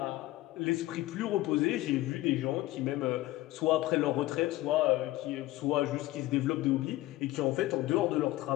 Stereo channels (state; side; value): quieter; right; 17.1 dB